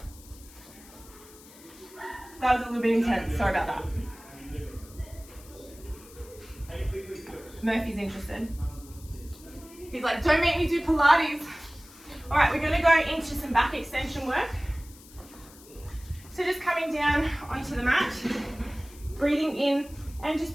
That was a little bit intense, sorry about that. Murphy's interested. He's like, don't make me do Pilates. All right, we're gonna go into some back extension work. So just coming down onto the mat, breathing in and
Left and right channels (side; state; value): left; noise; hiss, 21 dB below the sound